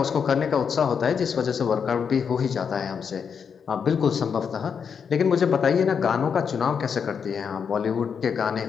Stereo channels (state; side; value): quieter; right; 6.7 dB